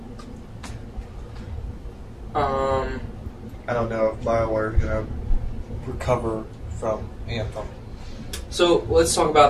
I don't know if BioWare is going to recover from Anthem. So let's talk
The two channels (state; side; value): identical; both; correlation 1.00